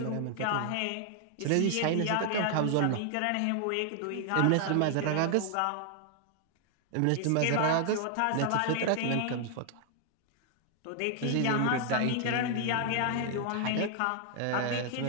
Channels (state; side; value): different; both; correlation 0.00